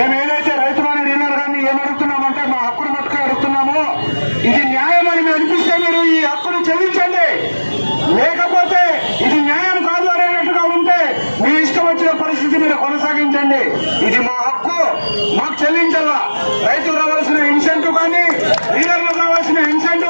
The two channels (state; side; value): inverted; both; correlation -1.00